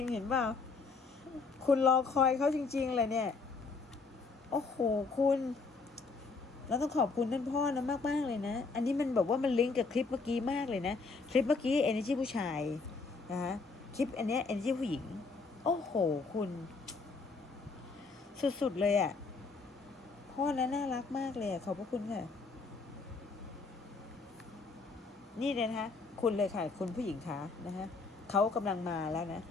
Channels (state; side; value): quieter; right; 4.3 dB